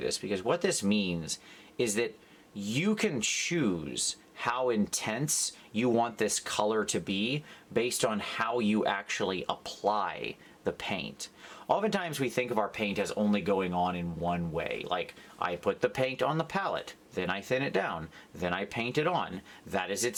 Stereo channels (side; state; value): both; identical; correlation 1.00